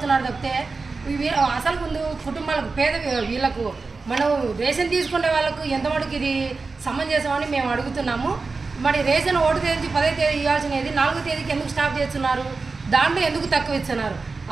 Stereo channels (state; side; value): quieter; left; 4.1 dB